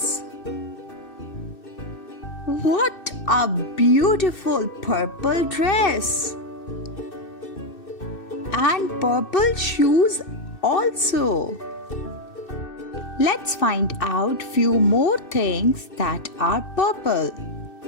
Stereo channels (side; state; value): right; late; 2.6 ms